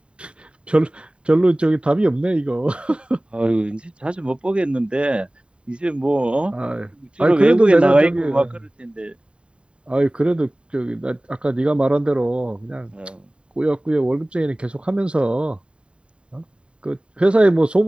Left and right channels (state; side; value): late; left; 0.054 ms